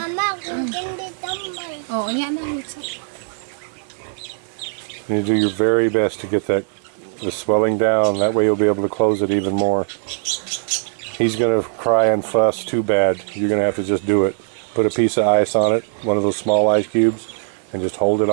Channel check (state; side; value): silent; left; digital silence